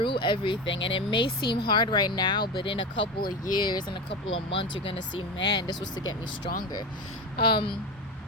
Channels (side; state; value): both; normal; correlation 0.23